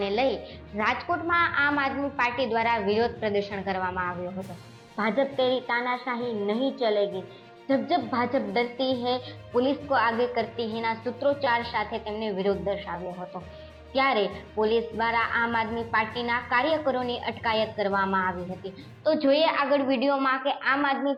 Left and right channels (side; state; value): both; identical; correlation 1.00